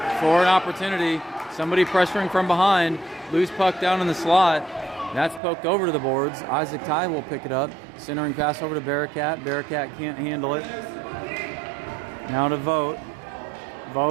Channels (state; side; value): drops out; left; at 5.4 s